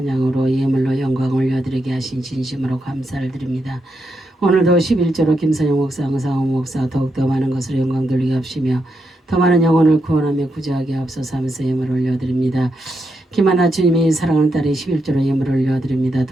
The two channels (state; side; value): normal; both; correlation 0.83